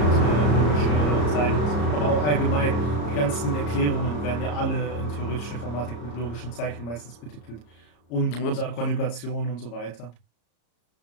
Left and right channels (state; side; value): late; right; 34 ms